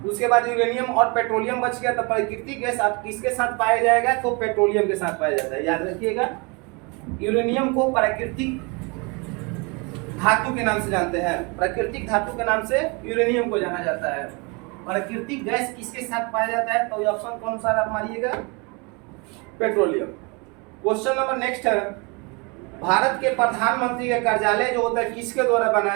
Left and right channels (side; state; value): left; quieter; 30.0 dB